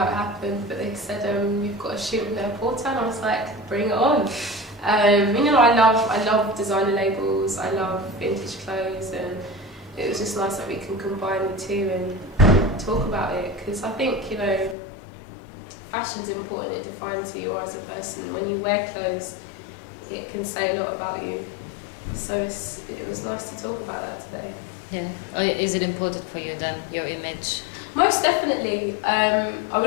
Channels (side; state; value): right; drops out; at 14.8 s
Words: it happened, but they said, you've got a shoot with Net-a-Porter, and I was like, bring it on. You know, I love designer labels, I love vintage clothes, and it was just nice that we can combine the two and talk about it, because I think, you know, fashion's important, it defines who you are as a person. When you wear clothes, it can say a lot about you. So it was nice to talk about that today. Yeah. Is it important for you then, your image? Most definitely. I